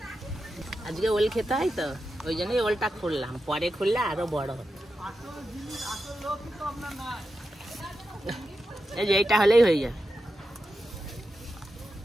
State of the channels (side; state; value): both; normal; correlation 0.89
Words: আজকে ওল খেতে হয় তো, ওই জন্যই ওলটা খুললাম, পরে খুললে আরো বড় হবে। এই যে এইটা হলেই হয়ে যায়।